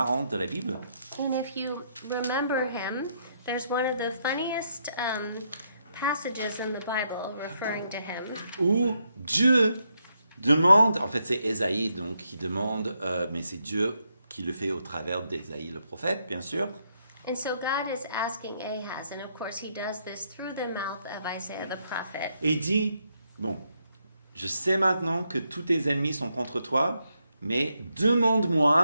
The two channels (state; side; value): inverted; both; correlation -0.78